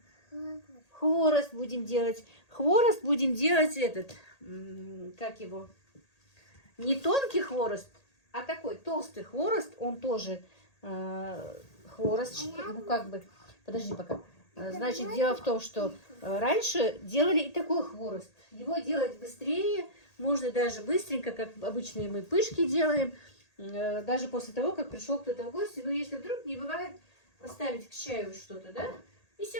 Хворост. Хворост будем делать. Хворост будем делать этот... Как его? не тонкий хворост, а такой толстый хворост. Он тоже хворост, ну как бы, подожди пока. Значит, дело в том, что раньше делали и такой хворост. Его делать быстрее, можно даже быстренько, как обычные мы пышки делаем, даже после того, как пришел кто-то в гости. Но если вдруг не бывает, поставить к чаю что-то, да? И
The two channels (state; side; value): late; right; 1.8 ms